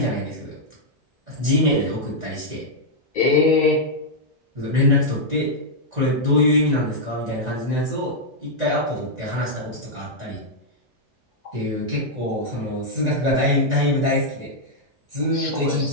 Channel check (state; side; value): late; left; 1.9 ms